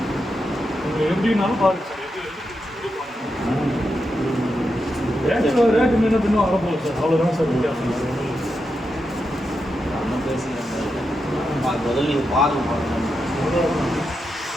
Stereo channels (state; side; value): normal; both; correlation 0.86